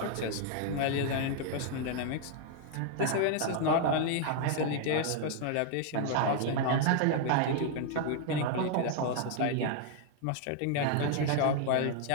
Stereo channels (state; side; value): different; both; correlation 0.00